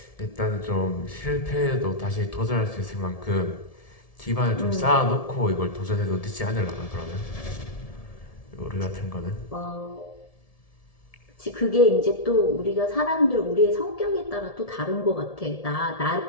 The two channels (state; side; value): late; right; 1.7 ms